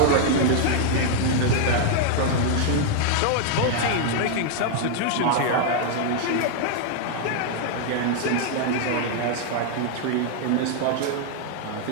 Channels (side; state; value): both; different; correlation 0.00